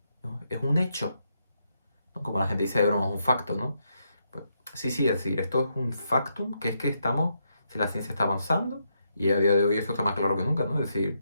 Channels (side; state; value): both; inverted; correlation -0.80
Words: ¿no? Es un hecho, ¿no? Como la gente dice de broma, un facto, ¿no? Pues, sí, es decir, esto es un factum, que es que si la ciencia está avanzando, y a día de hoy esto está más claro que nunca, ¿no? Es decir,